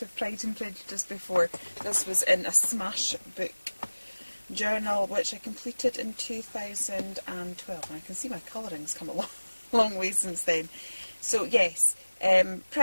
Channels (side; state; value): both; inverted; correlation -1.00